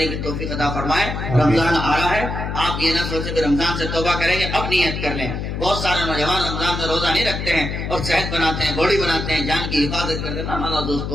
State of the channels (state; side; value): noise; left; hum, 4 dB below the sound